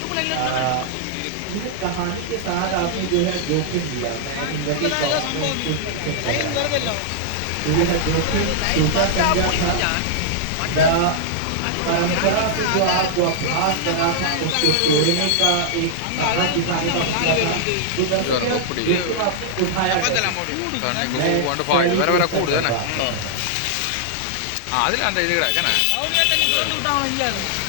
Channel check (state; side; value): different; both; correlation -0.01